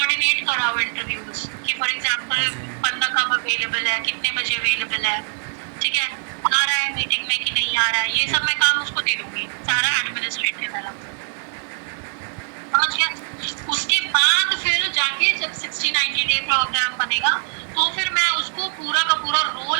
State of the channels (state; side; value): silent; left; digital silence